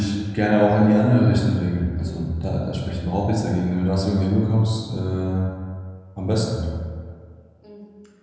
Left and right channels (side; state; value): both; identical; correlation 1.00